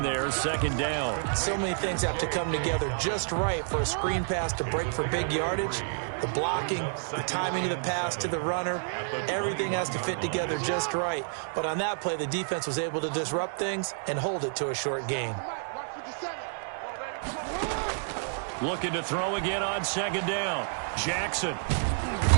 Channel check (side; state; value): left; silent; digital silence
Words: there, second down. So many things have to come together just right for a screen pass to break for big yardage. The blocking, the timing of the pass to the runner, everything has to fit together just right. But on that play, the defense was able to disrupt things and hold it to a short gain. Looking to throw again on second down. Jackson.